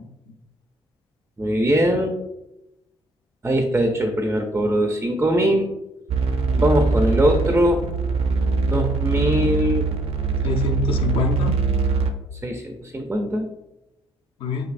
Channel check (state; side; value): normal; both; correlation 0.66